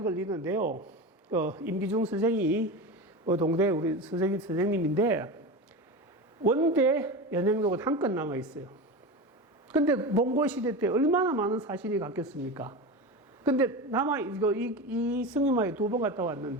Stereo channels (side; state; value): both; normal; correlation 0.25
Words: 걸리는데요. 임기중 선생이 동대 우리 선생님인데 원대 연행록은 한 건 남아 있어요. 근데 몽골 시대 때 얼마나 많은 사신이 갔겠습니까? 근데 이 승림하에 2번 갔다